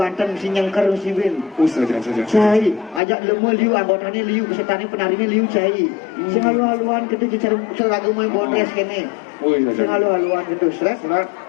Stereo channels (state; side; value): drops out; right; at 3.0 s